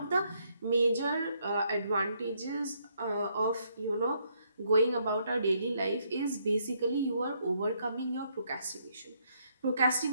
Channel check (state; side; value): inverted; both; correlation -0.72